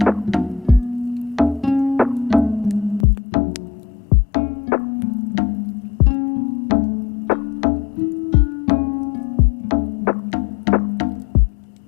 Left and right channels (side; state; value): right; drops out; at 3.1 s